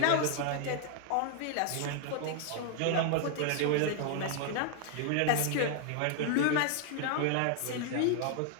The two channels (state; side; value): different; both; correlation 0.00